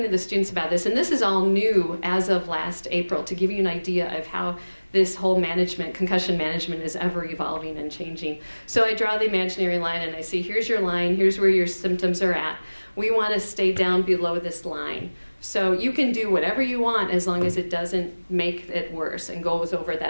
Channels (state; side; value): inverted; both; correlation -1.00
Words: to the students about this, and this is all new as of last April, to give you an idea of how this whole concussion management is ever evolving and changing. So I draw the imaginary line and I say, here's your line, here's where your symptoms are at. We want to stay down below this line. So you can do whatever you want as long as it doesn't make it worse and goes over